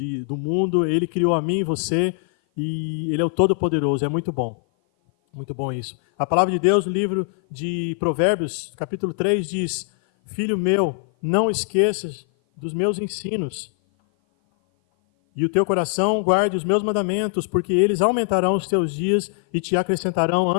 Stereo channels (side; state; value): right; silent; 56 dB below the other